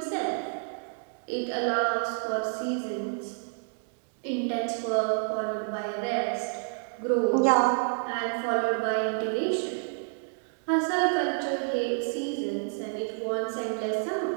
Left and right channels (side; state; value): left; silent; 58 dB below the other